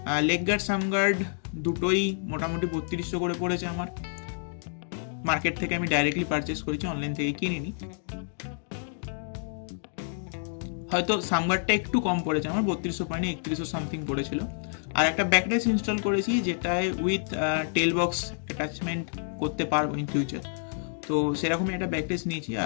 Leg guard some guard দুটোই মোটামুটি 3200 করে পড়েছে আমার। মার্কেট থেকে আমি ডাইরেক্টলি পারচেস করেছি, অনলাইন থেকে কিনিনি। হয়তো সামগার্ডটা একটু কম পড়েছে আমার, 3200 পয়েন্টে 3100 সামথিং পড়েছিল। আর একটা ব্যাকড্রেস ইনস্টল করেছি, যেটায় উইথ টেল বক্স অ্যাটাচমেন্ট করতে পারবো ইন ফিউচার। তো সেরকমই একটা ব্যাকড্রেস নিয়েছি,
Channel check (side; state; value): right; silent; digital silence